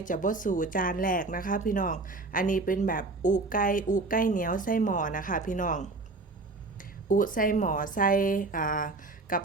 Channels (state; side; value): quieter; left; 3.5 dB